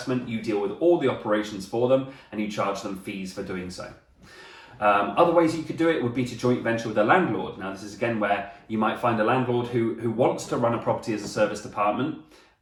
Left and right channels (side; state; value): both; identical; correlation 1.00